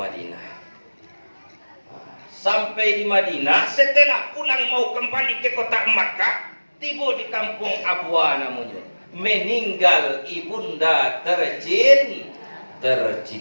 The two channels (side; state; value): both; inverted; correlation -1.00